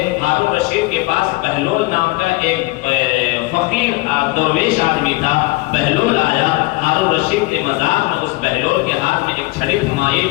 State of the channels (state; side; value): quieter; right; 22.1 dB